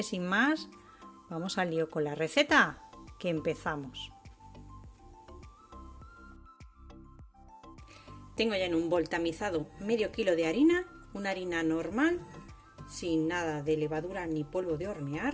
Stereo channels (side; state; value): both; identical; correlation 1.00